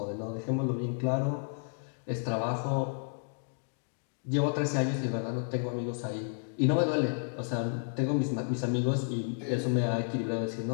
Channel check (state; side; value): silent; right; digital silence